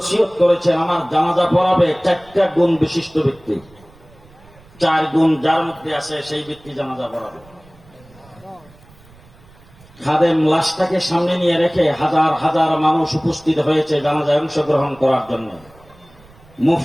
করেছেন, আমার জানাজা পড়াবে ৪টা গুণ বিশিষ্ট ব্যক্তি। ৪ গুণ যার মধ্যে আছে সেই ব্যক্তি জানাজা পড়াবে। খাদেম লাশটাকে সামনে নিয়ে রেখে হাজার হাজার মানুষ উপস্থিত হয়েছে জানাজায় অংশগ্রহণ করার জন্য।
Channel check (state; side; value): noise; right; rumble, 26 dB below the sound